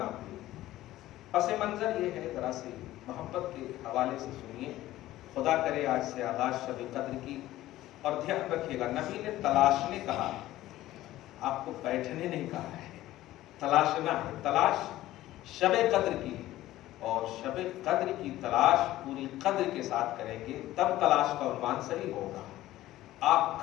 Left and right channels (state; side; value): quieter; right; 15.3 dB